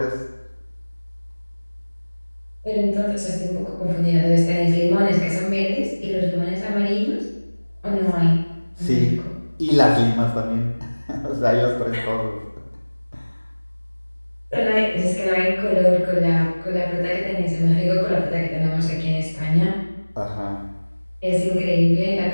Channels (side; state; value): both; inverted; correlation -1.00